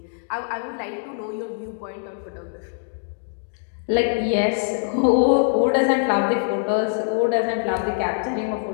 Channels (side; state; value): right; silent; 63 dB below the other